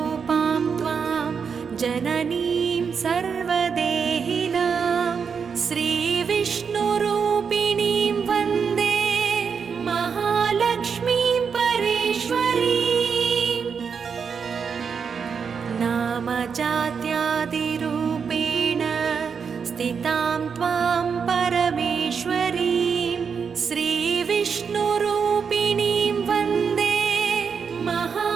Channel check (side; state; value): left; quieter; 6.2 dB